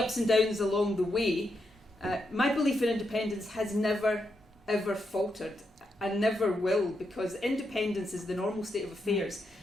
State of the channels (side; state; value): both; normal; correlation 0.83